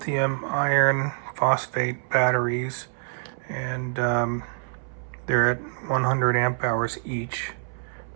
iron phosphate batteries, and they're at 100 amp hours each.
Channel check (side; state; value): left; silent; 61 dB below the other